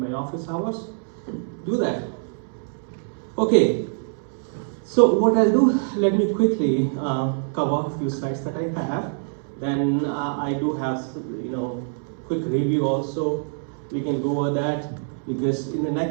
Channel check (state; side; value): silent; left; digital silence